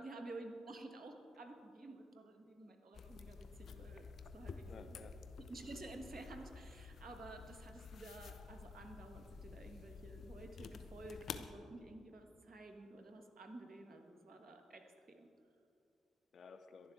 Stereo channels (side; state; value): both; normal; correlation 0.79